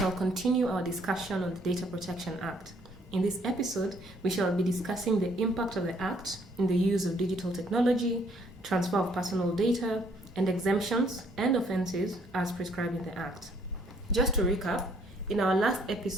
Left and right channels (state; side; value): normal; both; correlation 0.64